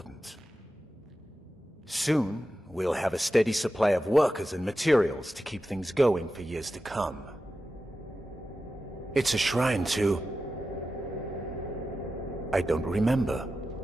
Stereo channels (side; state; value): both; normal; correlation 0.92